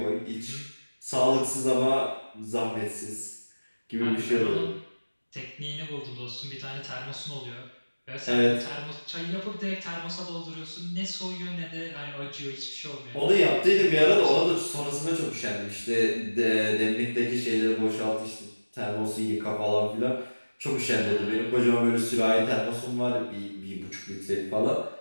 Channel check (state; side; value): inverted; both; correlation -1.00